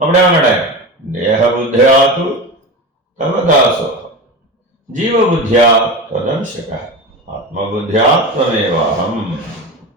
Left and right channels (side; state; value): both; normal; correlation 0.26